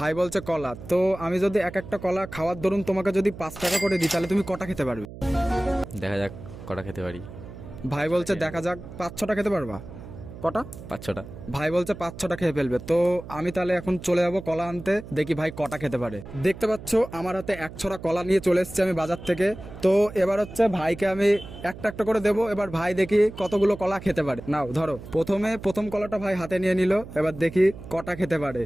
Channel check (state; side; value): noise; right; hum, 14 dB below the sound